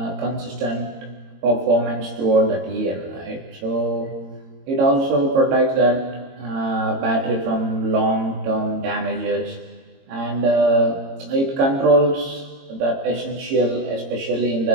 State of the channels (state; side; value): late; left; 22 ms